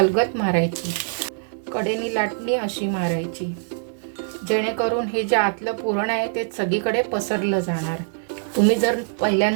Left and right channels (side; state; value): left; silent; digital silence